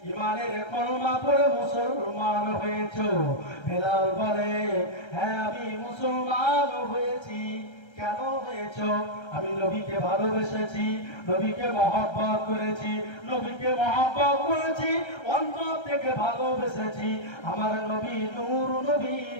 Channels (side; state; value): right; late; 1.3 ms